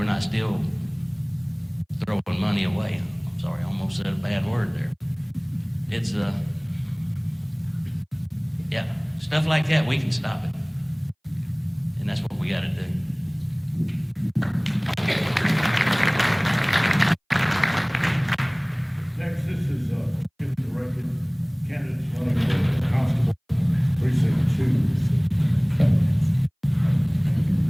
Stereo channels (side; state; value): both; identical; correlation 1.00